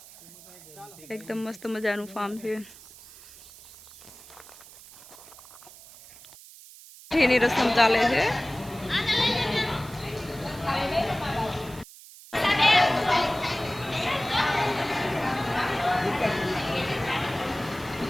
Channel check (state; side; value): noise; right; hiss, 19 dB below the sound